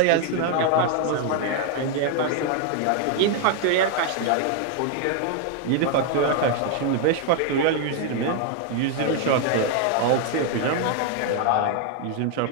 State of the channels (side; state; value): both; different; correlation 0.00